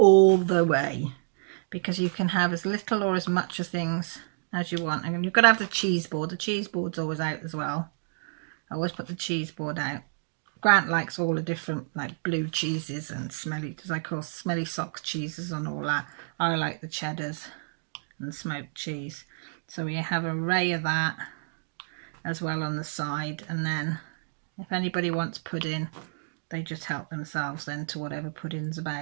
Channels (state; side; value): silent; left; digital silence